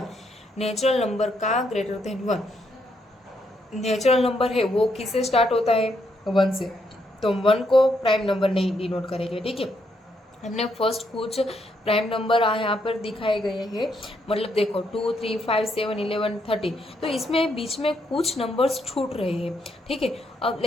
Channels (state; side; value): normal; both; correlation 0.76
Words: नेचुरल नंबर का ग्रेटर देन 1। नेचुरल नंबर है वो किससे स्टार्ट होता है, 1 से, तो 1 को प्राइम नंबर नहीं डिनोट करेंगे। ठीक है, हमने फर्स्ट कुछ प्राइम नंबर यहाँ पर दिखाए गए हैं, मतलब देखो 2 3 5 7 11 30, तो इसमें बीच में कुछ नंबर्स छूट रहे हैं। ठीक है, अब